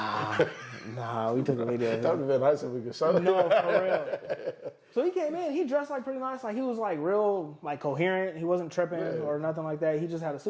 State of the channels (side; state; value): both; identical; correlation 1.00